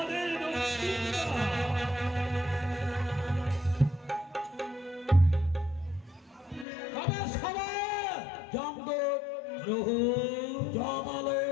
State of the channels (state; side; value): drops out; right; at 6.7 s